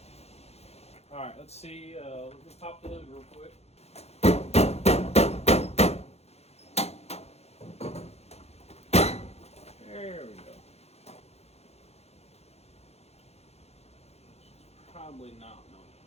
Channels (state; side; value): late; right; 0.31 ms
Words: All right, let's see. Let me pop the hood real quick. There we go. Probably not. No.